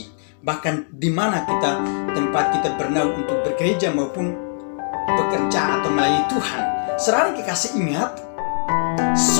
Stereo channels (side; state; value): right; silent; digital silence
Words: bahkan di mana tempat kita bernaung untuk bekerja maupun bekerja atau melayani Tuhan. Saudara kekasih, ingat,